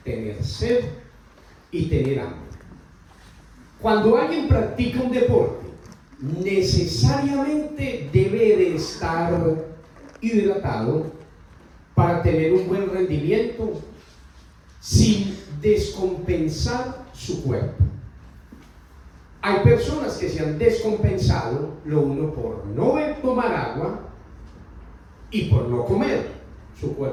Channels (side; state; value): both; identical; correlation 1.00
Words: tener sed y tener hambre. Cuando alguien practica un deporte, necesariamente debe de estar hidratado para tener un buen rendimiento sin descompensar su cuerpo. Hay personas que se han descompensado, lo uno por no tomar agua y por no comer. Su